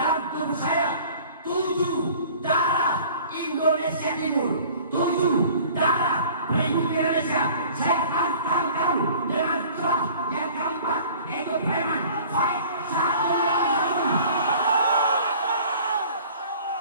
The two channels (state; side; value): inverted; both; correlation -0.48